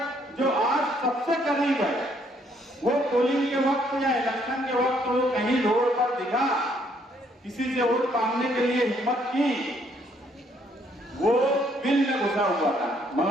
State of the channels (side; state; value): both; normal; correlation 0.68